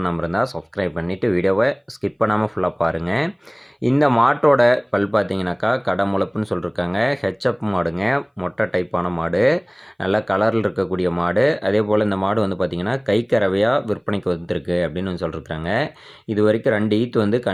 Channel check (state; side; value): identical; both; correlation 1.00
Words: இருந்தா, சப்ஸ்கிரைப் பண்ணிட்டு வீடியோவ ஸ்கிப் பண்ணாம ஃபுல்லா பாருங்க. இந்த மாட்டோட பல் பார்த்தீங்கன்னாக்கா, கடமுளப்புன்னு சொல்லிருக்காங்க. ஹெச்எப் மாடுங்க. மொட்டை டைப்பான மாடு. நல்ல கலர்ல இருக்கக்கூடிய மாடு. அதேபோல இந்த மாடு வந்து பார்த்தீங்கன்னா, கைக்கறவையா விற்பனைக்கு வந்திருக்கு அப்படின்னு சொல்லிருக்காங்க. இதுவரைக்கும் 2 ஈத்து வந்து